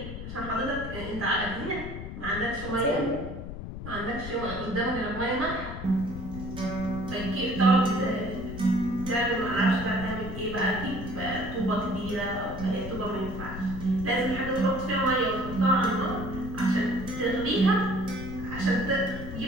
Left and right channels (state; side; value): noise; left; rumble, 9 dB below the sound